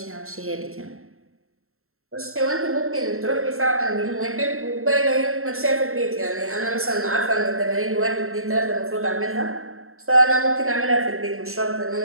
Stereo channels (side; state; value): left; late; 0.62 ms